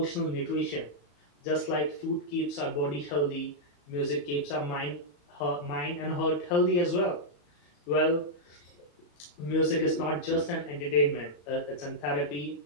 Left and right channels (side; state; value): right; late; 34 ms